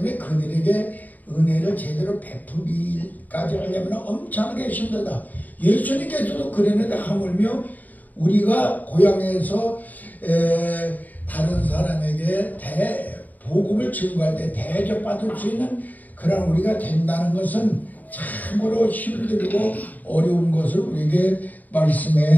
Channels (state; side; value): late; right; 0.081 ms